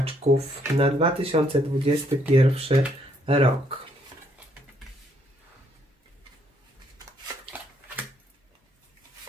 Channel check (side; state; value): both; normal; correlation 0.70